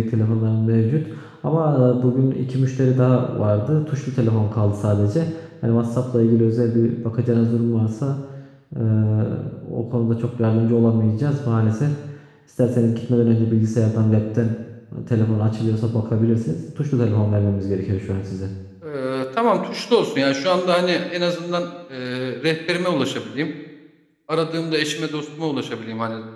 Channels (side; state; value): both; identical; correlation 1.00